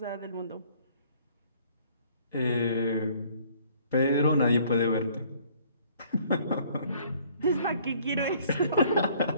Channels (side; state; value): both; inverted; correlation -0.59